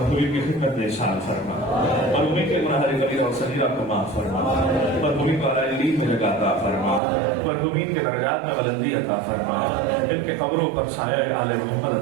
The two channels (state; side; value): drops out; left; at 7.0 s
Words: کی خدمت میں شامل فرما، مرحومین کے گناہ کبیرہ اور صغیرہ کو معاف فرما، مرحومین کو اعلی علیم میں جگہ عطا فرما، مرحومین کے درجات میں بلندی عطا فرما، ان کے قبروں پر سایہ آل محمد